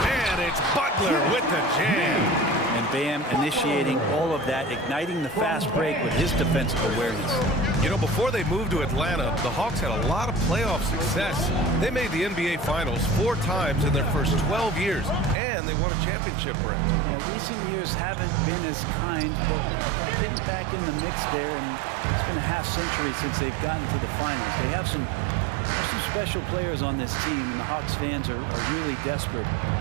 it's Butler with the jam. And Bam initiating all of that, igniting the fast break with his defensive awareness. You know, before they moved to Atlanta, the Hawks had a lot of playoff success. They made the NBA Finals 4 times in their first 12 years, and they won a championship, Brett. Yeah, recent years haven't been as kind, but getting back in the mix there, and it's been a half-century since they've gotten to the finals. They have some special players on this team, and the Hawks fans are really desperate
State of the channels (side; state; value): left; drops out; at 15.4 s